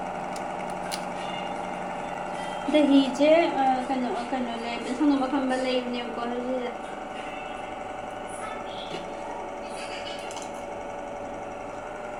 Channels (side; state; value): both; identical; correlation 1.00